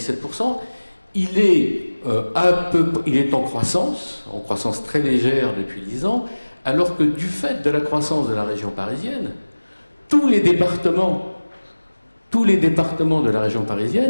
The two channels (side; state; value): both; inverted; correlation -1.00